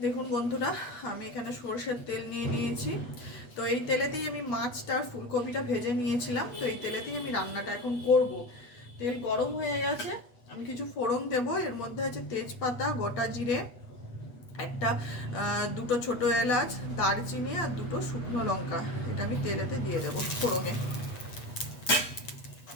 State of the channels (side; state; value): right; late; 8.2 ms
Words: দেখুন বন্ধুরা, আমি এখানে সরষের তেল নিয়ে নিয়েছি। তো এই তেলেতেই আমি মাছটা আর ফুলকপিটা ভেজে নিয়েছিলাম। তো এই তেলেতেই আমি রান্নাটা এখন করব। তেল গরম হয়ে গেছে, আমি কিছু ফোড়ন দেব। এর মধ্যে আছে তেজপাতা, গোটা জিরে, একটা দুটো ছোট এলাচ, দারচিনি আর দুটো শুকনো লঙ্কা। এটা আমি তেলেতে দিয়ে দেবো ফোড়নে।